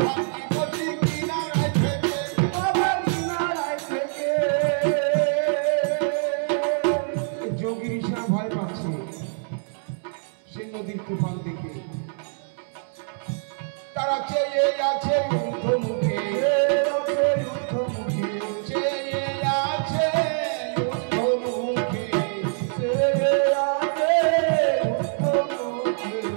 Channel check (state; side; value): silent; left; 62 dB below the other